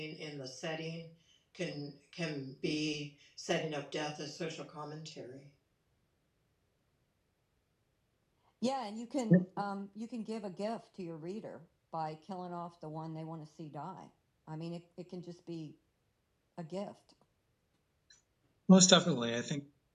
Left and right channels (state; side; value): identical; both; correlation 1.00